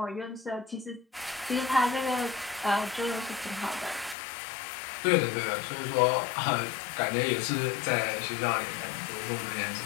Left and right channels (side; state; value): right; drops out; at 4.2 s